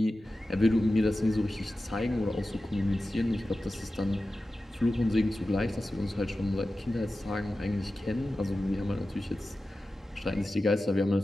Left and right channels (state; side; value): normal; both; correlation 0.94